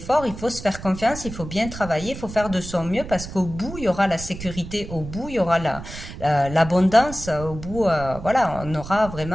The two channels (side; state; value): right; noise; rumble, 11 dB below the sound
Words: il faut se faire confiance, il faut bien travailler, il faut faire de son mieux parce qu'au bout, il y aura la sécurité, au bout, il y aura l'abondance, au bout, voilà, on aura